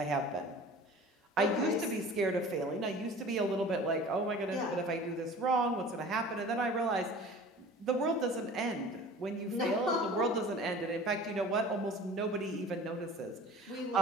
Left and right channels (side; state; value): both; normal; correlation 0.43